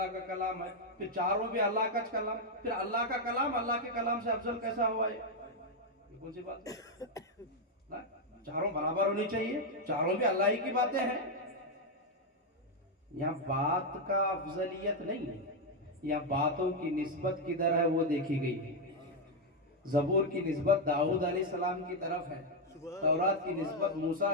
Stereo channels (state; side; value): normal; both; correlation 0.02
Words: کا کلام ہے، پھر چاروں بھی اللہ کا کلام، پھر اللہ کا کلام اللہ کے کلام سے افضل کیسا ہوا ہے؟ یہ کون سی بات ہے؟ چاروں برابر ہونی چاہیے، چاروں بھی اللہ ہی کی باتیں ہیں۔ یہاں بات کا افضلیت نہیں ہے، یہاں باتوں کی نسبت کدھر ہے وہ دیکھی گئی ہے۔ زبور کی نسبت داؤد علیہ السلام کی طرف ہے، تورات کی نسبت موسیٰ